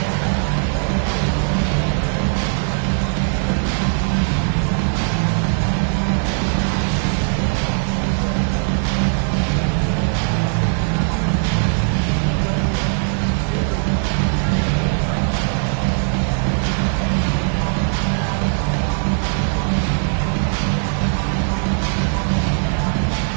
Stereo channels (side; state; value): left; silent; 66 dB below the other